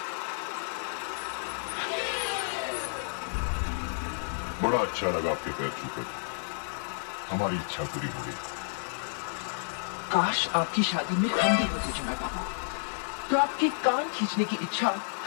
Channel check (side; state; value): right; silent; digital silence